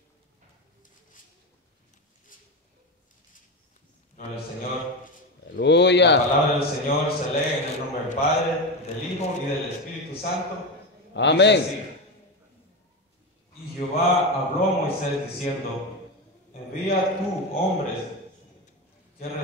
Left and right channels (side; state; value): both; normal; correlation 0.17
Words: Gloria al Señor. La Aleluya. palabra del Señor se lee en el nombre del Padre, del Hijo y del Espíritu Santo. Amén. Dice así: Y Jehová habló a Moisés diciendo: Envía tú hombres que